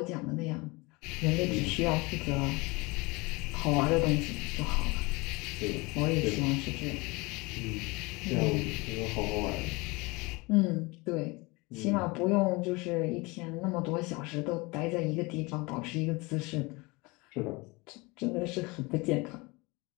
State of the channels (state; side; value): quieter; right; 25.3 dB